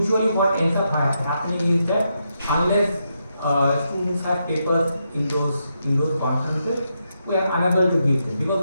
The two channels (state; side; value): inverted; both; correlation -0.83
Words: what ends up happening is that unless students have papers in those conferences, we are unable to give them, because